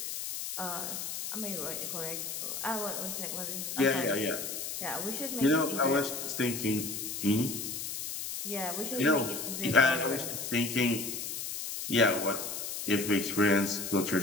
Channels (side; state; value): left; noise; hiss, 5 dB below the sound